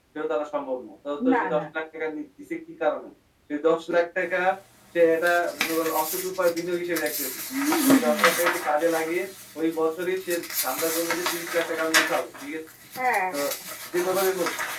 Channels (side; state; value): both; identical; correlation 1.00